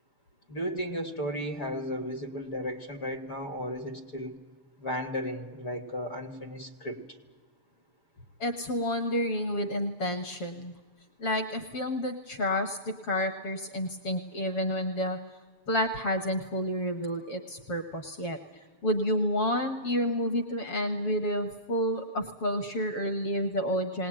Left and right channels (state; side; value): late; right; 7.1 ms